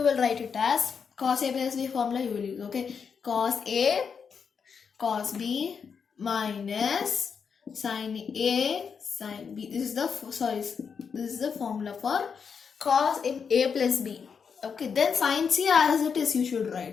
will write it as cos A plus B formula you will use. Okay. Cos A cos B minus sin A sin B. This is the formula for cos A plus B. Okay, then sin C as it is you should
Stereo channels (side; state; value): right; quieter; 6.3 dB